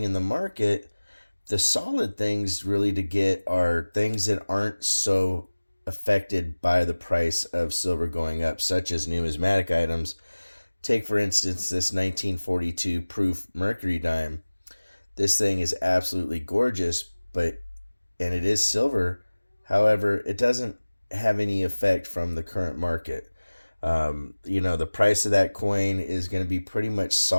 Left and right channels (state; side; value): inverted; both; correlation -1.00